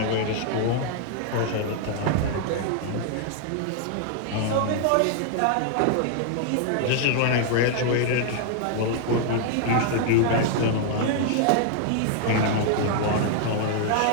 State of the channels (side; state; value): both; different; correlation 0.00